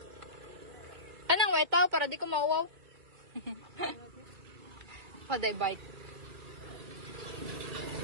Anong white tao para di ko mauwaw? Paday bike.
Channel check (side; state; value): left; late; 2.2 ms